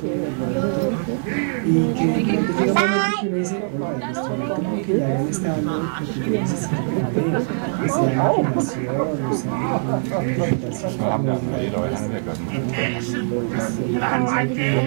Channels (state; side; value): silent; left; digital silence